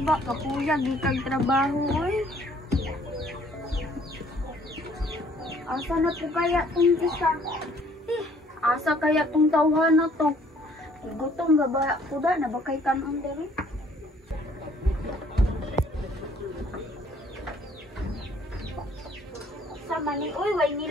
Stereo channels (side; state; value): both; normal; correlation 0.60